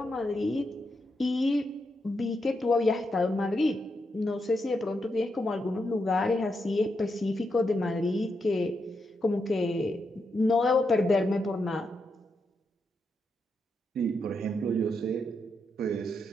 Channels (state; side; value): normal; both; correlation 0.83